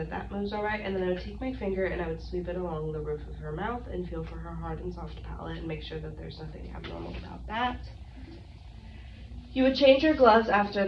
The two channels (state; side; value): identical; both; correlation 1.00